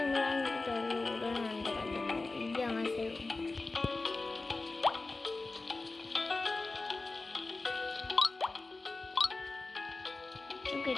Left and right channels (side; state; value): right; quieter; 3.4 dB